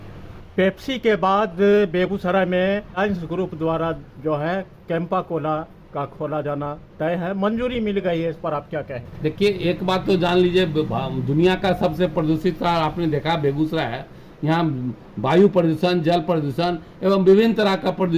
पेप्सी के बाद बेगूसराय में लायंस ग्रुप द्वारा जो है कैंपा कोला का खोला जाना तय है, मंजूरी मिल गई है, इस पर आप क्या कहें? देखिए, एक बात तो जान लीजिए, दुनिया का सबसे प्रदूषित शहर आपने देखा बेगूसराय है। यहाँ वायु प्रदूषण, जल प्रदूषण एवं विभिन्न तरह का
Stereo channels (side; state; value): both; identical; correlation 1.00